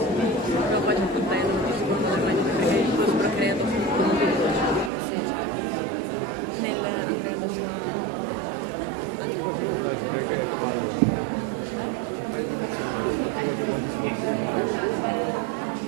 No, poi c'è tutto il tempo, secondo me, perché io sono creato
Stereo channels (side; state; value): left; drops out; at 4.9 s